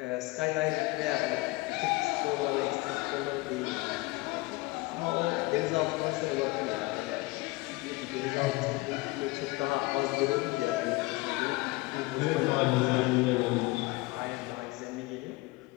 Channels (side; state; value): right; quieter; 22.2 dB